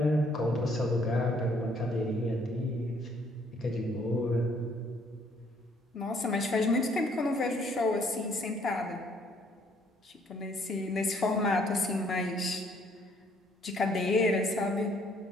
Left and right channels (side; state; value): both; normal; correlation 0.64